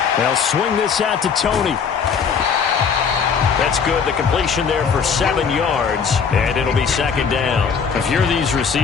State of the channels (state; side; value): quieter; right; 6.3 dB